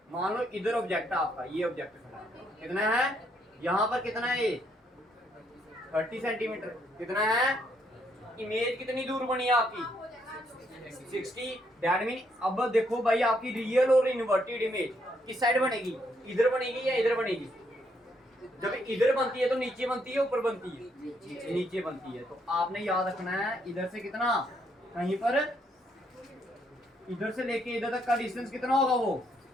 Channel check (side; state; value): both; normal; correlation 0.73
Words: मान लो इधर ऑब्जेक्ट है आपका, ये ऑब्जेक्ट कितना है? यहाँ पर कितना है ये? 30 सेंटीमीटर। कितना है? इमेज कितनी दूर बनी है आपकी? 60। दैट मीन अब देखो भाई, आपकी रियल और इन्वर्टेड इमेज किस साइड बनेगी? इधर बनेगी या इधर बनेगी? जब इधर बनती है तो नीचे बनती है ऊपर बनती है? नीचे बनती है। तो आपने याद रखना है इधर से कितना, कहीं पर इधर से लेके इधर तक का डिस्टेंस कितना होगा? वो